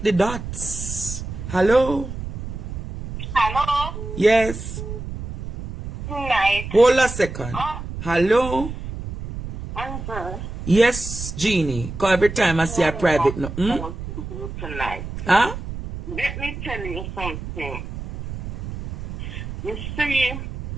the dots. Hello? Hello? Yes. Night. Hold a second. Hello? Amber. Yes, Jeannie. Because every time I see a private no. Tonight. Huh? Let me tell you something. You see,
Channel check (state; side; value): noise; right; rumble, 8 dB below the sound